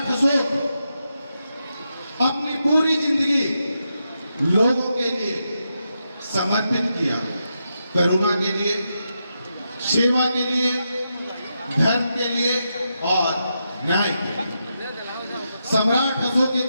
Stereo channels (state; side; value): inverted; both; correlation -0.85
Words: अशोक अपनी पूरी जिंदगी लोगों के लिए समर्पित किया, करुणा के लिए, सेवा के लिए, धर्म के लिए और न्याय के लिए। सम्राट अशोक